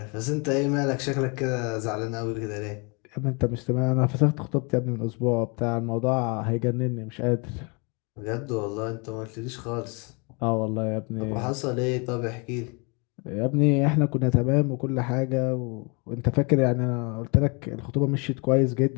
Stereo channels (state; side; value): quieter; right; 32.2 dB